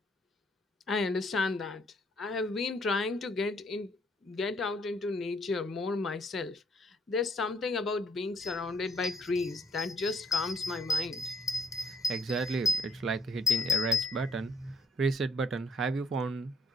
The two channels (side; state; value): both; normal; correlation 0.69